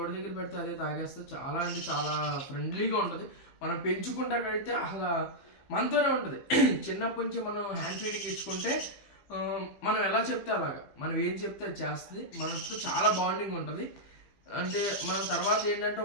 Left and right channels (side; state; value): right; late; 15 ms